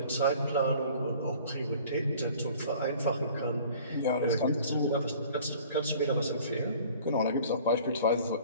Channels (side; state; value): both; inverted; correlation -0.49